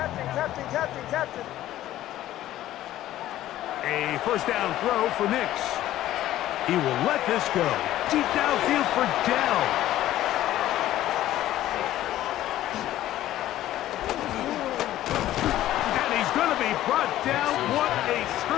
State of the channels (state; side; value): quieter; right; 13.8 dB